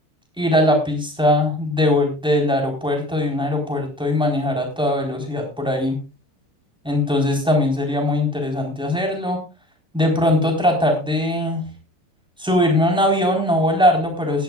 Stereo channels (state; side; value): normal; both; correlation 0.45